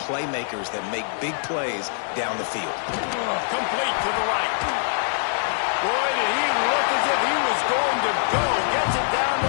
playmakers that make big plays down the field. Complete to the right. Boy, did he look as if he was going to go. Gets it down to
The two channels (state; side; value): silent; right; digital silence